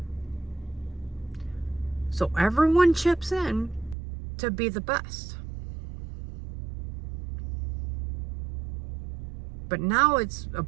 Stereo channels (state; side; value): drops out; left; at 4.0 s